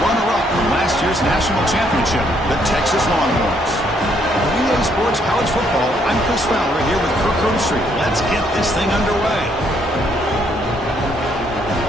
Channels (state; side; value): normal; both; correlation 0.70